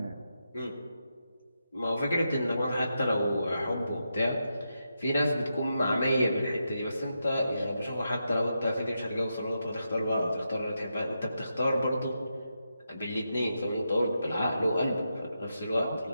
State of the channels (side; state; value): both; inverted; correlation -0.85